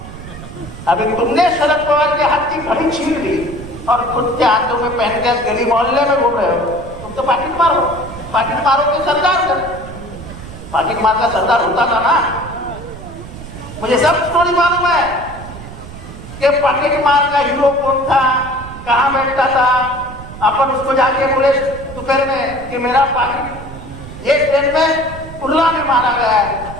अभी तुमने शरद पवार के हाथ की घड़ी छीन ली और खुद के हाथों में पहन के गली मोहल्ले में घूम रहे हो। तुम तो पाकिट मारो के सरदार कर। पाकिट मार का सरदार होता था ना। मुझे सब स्टोरी मालूम है कि पाकिट मार का हीरो कौन था, कहाँ बैठता था। अपन उसको जाके बोले दोपहर में कि मेरा पाकिट ये ट्रेन में उल्ला में मारा गया है,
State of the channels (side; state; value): right; noise; rumble, 13 dB below the sound